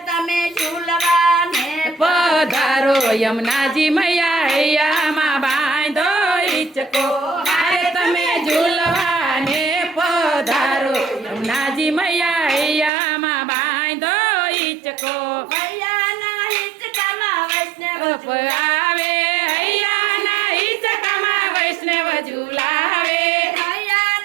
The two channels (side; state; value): left; drops out; at 12.9 s